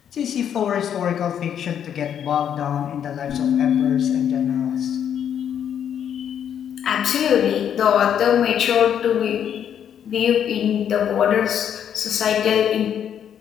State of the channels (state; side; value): quieter; right; 9.0 dB